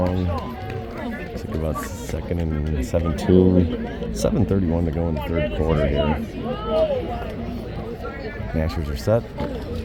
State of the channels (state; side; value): identical; both; correlation 1.00